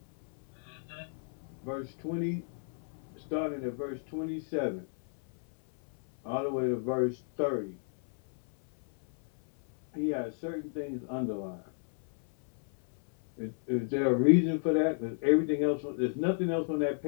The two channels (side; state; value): right; silent; 56 dB below the other